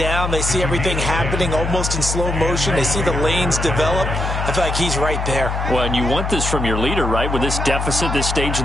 They see everything happening almost in slow motion. They see the lanes develop. I feel like he's right there. Well, and you want this from your leader, right? With this deficit, this stage of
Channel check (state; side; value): noise; left; hum, 2 dB below the sound